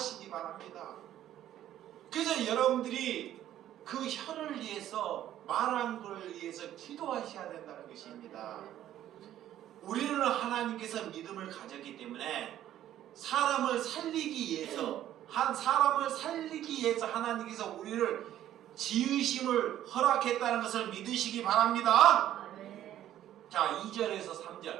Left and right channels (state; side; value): quieter; left; 12.1 dB